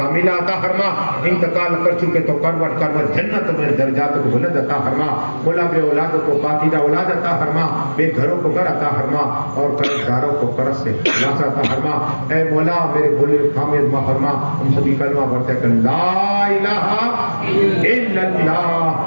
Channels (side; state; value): both; inverted; correlation -1.00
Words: عطا فرما، انتقال کر چکے تو کروٹ کروٹ جنت میں درجات کو بلند عطا فرما، مولا بے اولاد کو پاکیزہ اولاد عطا فرما، بے گھروں کو گھر عطا فرما، اور قرض داروں کو قرض سے خلاص عطا فرما۔ اے مولا میرے بولے خامد محرما، ہم سبھی کلمہ پڑھتے ہیں کہ لا الہ الا